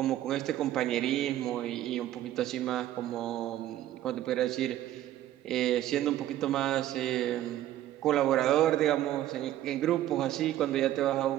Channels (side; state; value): left; quieter; 13.3 dB